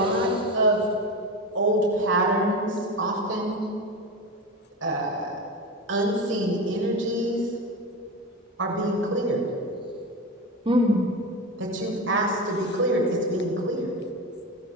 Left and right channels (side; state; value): both; normal; correlation 0.23